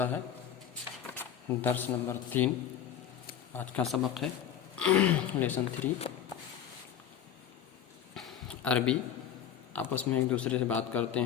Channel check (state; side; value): quieter; right; 9.3 dB